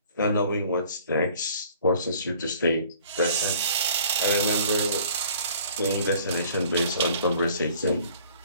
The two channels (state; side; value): inverted; both; correlation -0.53